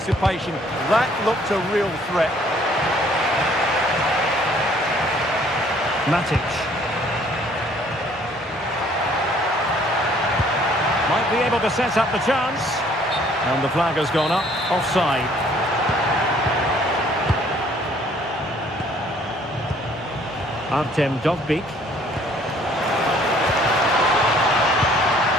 That looked a real threat. Matic. Might be able to set up the chance. And the flag has gone up. Offside. Artem Dovbik.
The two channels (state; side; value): normal; both; correlation 0.59